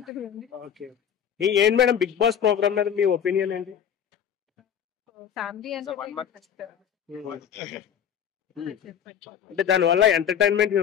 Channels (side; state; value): right; quieter; 8.6 dB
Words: ఓకే, ఏంటి మేడం బిగ్ బాస్ ప్రోగ్రామ్ మీద మీ ఒపీనియన్ ఏంటి? ఫ్యామిలీ అంటే దాని వల్ల ఎంటర్టైన్మెంట్